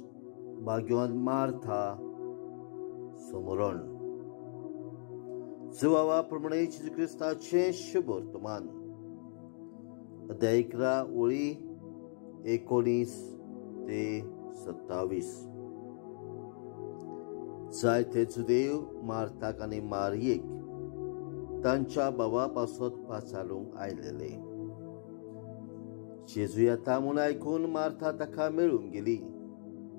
भाग्यवान मार्था समरण प्रमाणे जेजू क्रिस्ताचे शुभ वर्तमान अध्याय 11 ओळी 19 ते 27. जायते जुदेव मार्थाक आनी मारियेक तांच्या भावापासत पाचारूंक आयलेले. जेजू येता म्हूण आयकून मार्था ताका मेळूंक गेली,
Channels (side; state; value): right; silent; 54 dB below the other